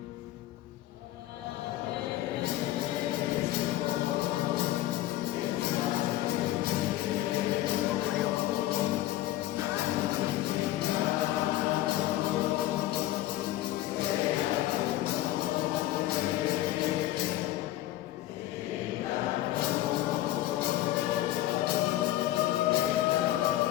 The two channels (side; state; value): right; quieter; 15.0 dB